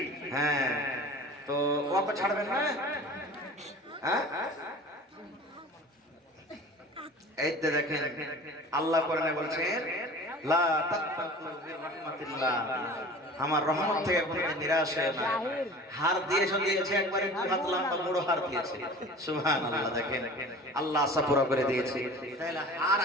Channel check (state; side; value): normal; both; correlation 0.40